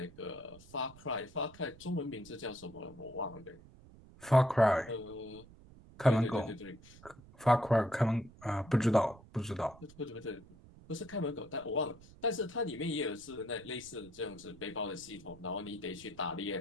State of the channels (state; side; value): noise; right; rumble, 21 dB below the sound